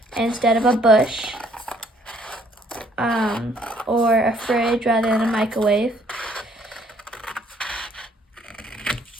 instead of a bush. Or a fridge rather than a microwave.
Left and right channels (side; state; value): both; normal; correlation 0.64